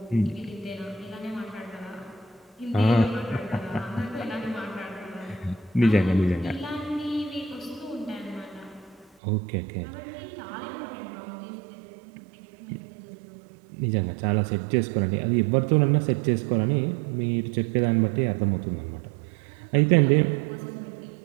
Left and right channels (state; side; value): drops out; left; at 9.2 s